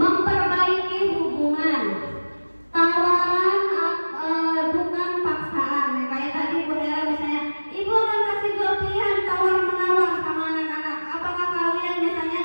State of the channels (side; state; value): both; inverted; correlation -1.00